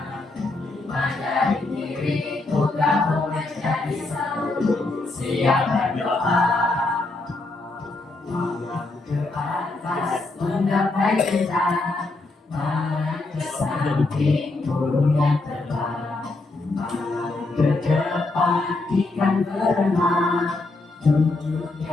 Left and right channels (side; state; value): right; quieter; 3.2 dB